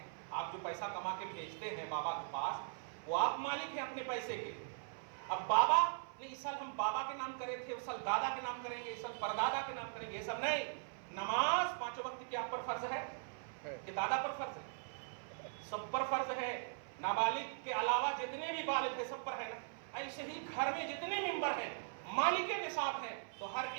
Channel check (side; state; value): left; silent; 51 dB below the other